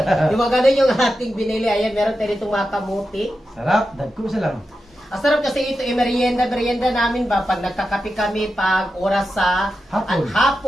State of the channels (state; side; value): normal; both; correlation 0.90